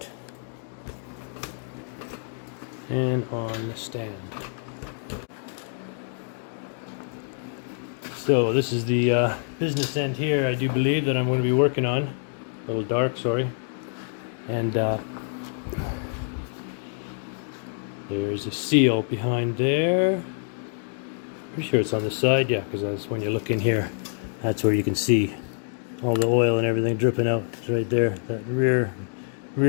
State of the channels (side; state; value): right; silent; digital silence